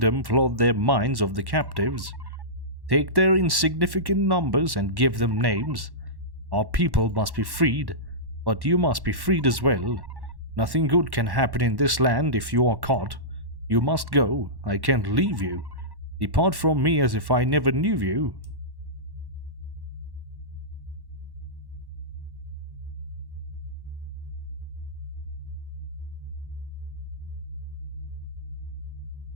flood their minds of the captives. Take their insignificant numbers and give them names. Our people must be freed, but you must be freed as well. Nothing good can happen in this land if you are caught. You must go. I can't leave you. Depart from me as if I never knew you.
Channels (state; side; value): late; left; 1.1 ms